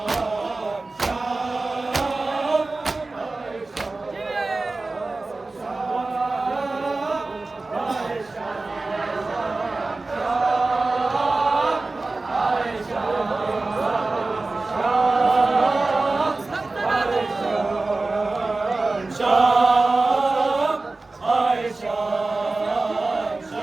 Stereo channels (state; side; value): quieter; left; 3.4 dB